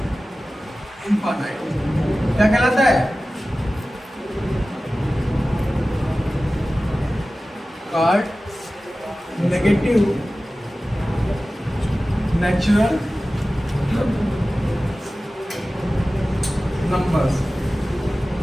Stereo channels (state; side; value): normal; both; correlation 0.96